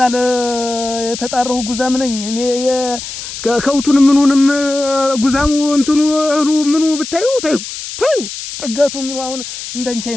የተጣራሁ ጉዛም ነኝ እኔ ከውቱን ምኑንም ጉዛሙ እንትኑ ምኑ ብታዩ ታዩ ጥጋቱ ምኑ አሁን እንደንቻ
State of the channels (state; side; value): noise; left; hiss, 9 dB below the sound